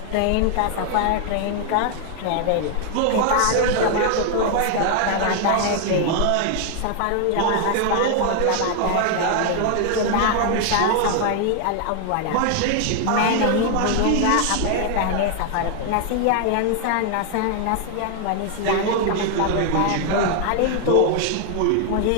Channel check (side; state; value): both; different; correlation 0.00